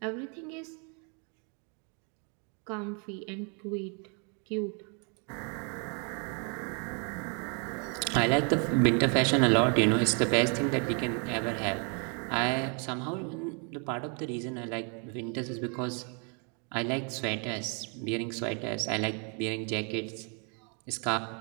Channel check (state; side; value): quieter; left; 37.6 dB